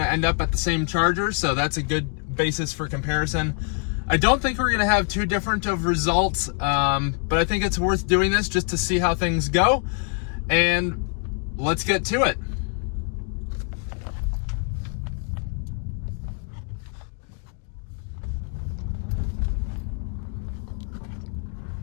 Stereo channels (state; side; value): quieter; right; 39.9 dB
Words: to end up at the same charger, so that's a good basis for comparison. I don't think we're going to have too different of results, but I think it's worth doing this just to see how things go. And let's get to it.